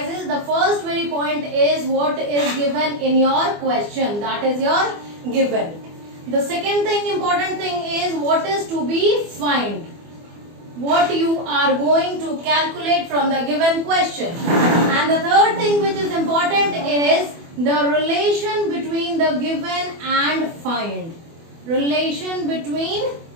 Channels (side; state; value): left; late; 24 ms